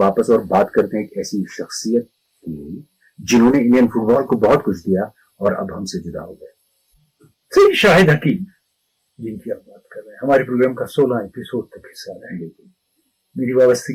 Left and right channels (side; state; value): both; identical; correlation 1.00